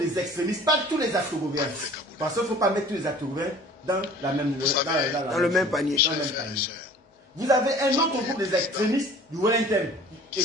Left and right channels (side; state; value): both; normal; correlation 0.48